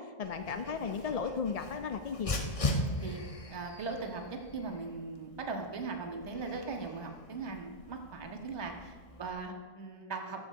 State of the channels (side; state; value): right; late; 1.6 ms